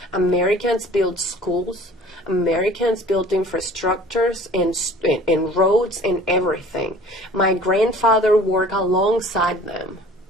Americans built schools, Americans built infrastructures and roads and everything. My grandfather worked alongside them.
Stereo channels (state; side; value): normal; both; correlation 0.48